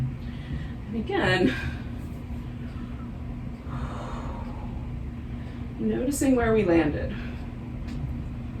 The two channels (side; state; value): both; identical; correlation 1.00